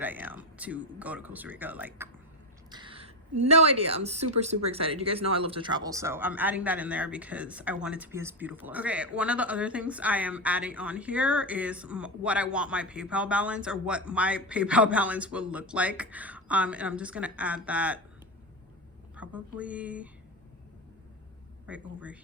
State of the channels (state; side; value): normal; both; correlation 0.13